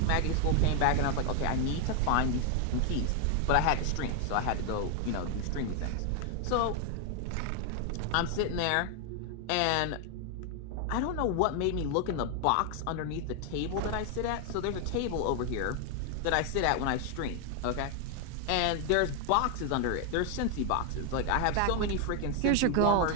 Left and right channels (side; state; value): both; different; correlation 0.01